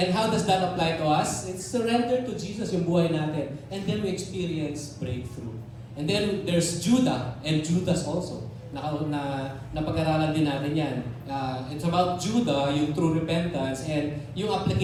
how does that apply to us? It's surrender to Jesus yung buhay natin. And then we experience breakthrough. And then there's Judah and Judas also. Napag-aralan din natin yan. It's about Judah, yung true repentance, and yung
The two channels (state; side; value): identical; both; correlation 1.00